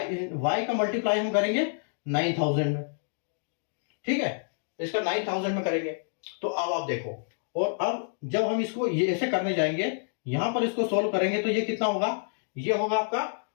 का मल्टीप्लाई हम करेंगे 9000 में, ठीक है, इसका 9000 में करेंगे। तो अब आप देखो, और अब जब हम इसको ये ऐसे करने जाएंगे, यहां पर इसको सोल्व करेंगे तो ये कितना होगा, ये होगा आपका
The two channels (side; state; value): right; silent; digital silence